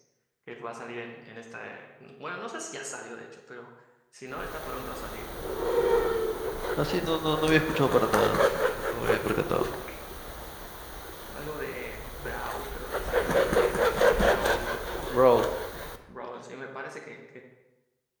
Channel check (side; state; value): both; identical; correlation 1.00